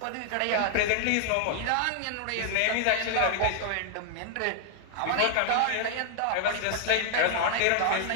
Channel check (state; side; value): different; both; correlation 0.00